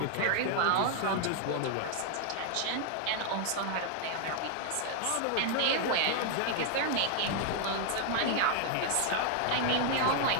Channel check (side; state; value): both; different; correlation 0.00